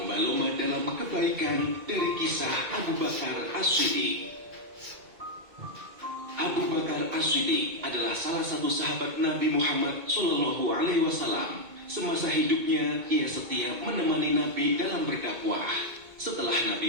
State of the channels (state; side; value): late; left; 2.2 ms